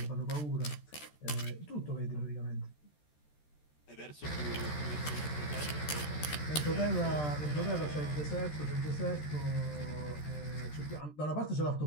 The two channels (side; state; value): right; late; 13 ms